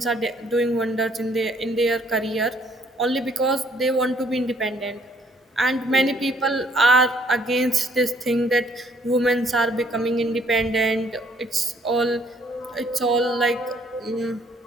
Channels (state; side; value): normal; both; correlation 0.64